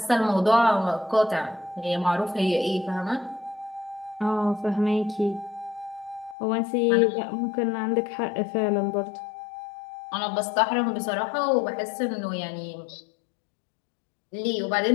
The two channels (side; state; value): right; drops out; at 6.4 s